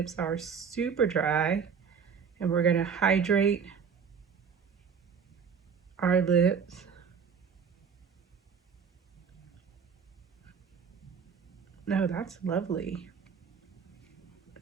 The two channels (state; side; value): quieter; left; 6.5 dB